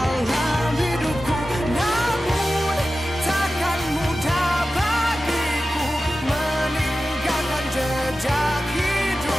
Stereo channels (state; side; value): normal; both; correlation 0.94